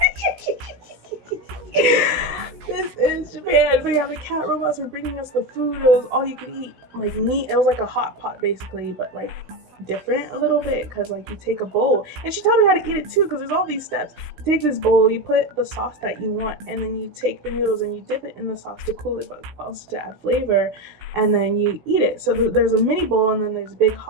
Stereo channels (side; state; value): left; late; 16 ms